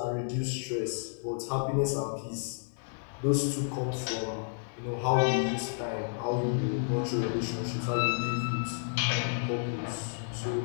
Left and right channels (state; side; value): silent; right; digital silence